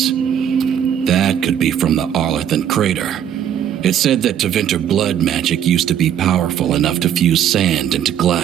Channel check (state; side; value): quieter; left; 9.6 dB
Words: That could be from the Arlethan crater. It said that Tevinter blood magic used to be powerful enough to fuse sand into